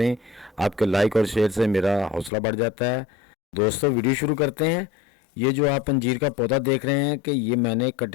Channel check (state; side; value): drops out; right; at 2.3 s